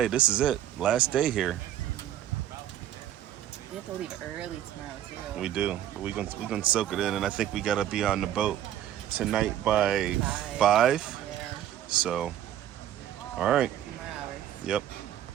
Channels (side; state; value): left; quieter; 11.5 dB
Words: This is it. Last day here. We have to leave early tomorrow too. We do. We're gonna soak it in, and I think we gotta be on the boat tonight by 5. Yeah. So, all right. 2 more hours. Yep.